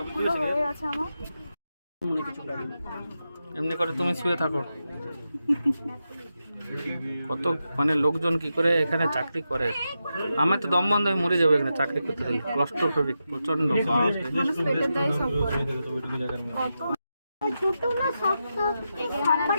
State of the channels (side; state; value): both; inverted; correlation -0.88